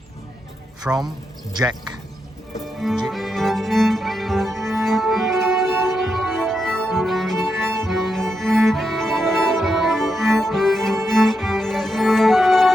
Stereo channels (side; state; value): both; normal; correlation 0.84